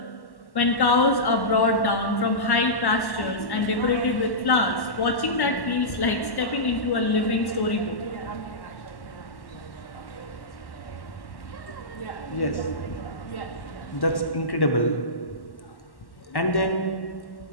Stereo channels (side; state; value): right; late; 1.1 ms